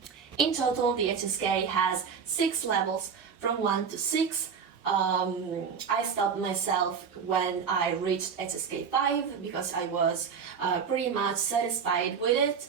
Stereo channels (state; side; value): quieter; left; 6.4 dB